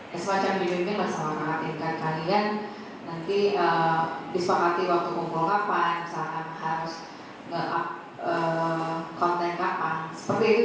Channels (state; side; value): identical; both; correlation 1.00